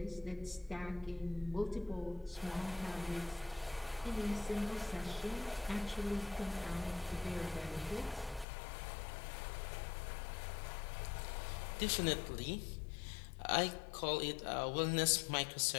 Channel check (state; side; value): drops out; right; at 8.5 s